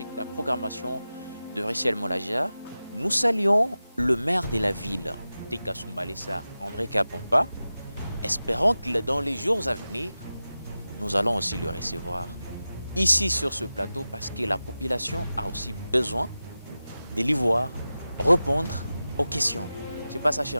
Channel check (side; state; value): both; inverted; correlation -0.94